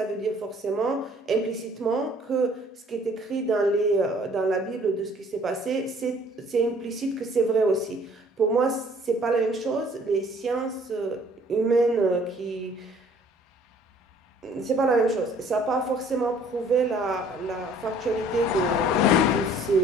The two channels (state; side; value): normal; both; correlation 0.56